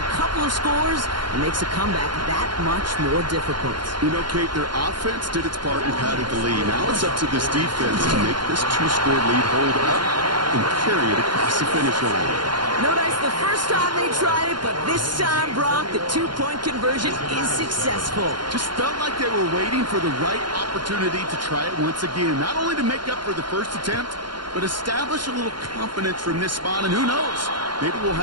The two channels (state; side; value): late; left; 0.71 ms